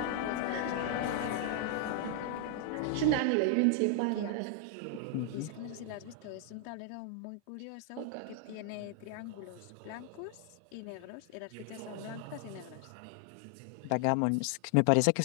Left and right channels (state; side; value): different; both; correlation 0.00